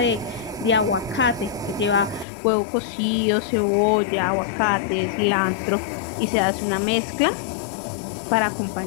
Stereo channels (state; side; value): drops out; right; at 2.2 s